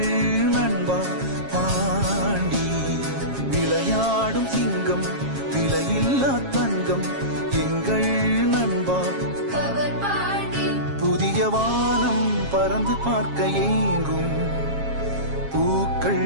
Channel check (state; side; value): late; left; 7.4 ms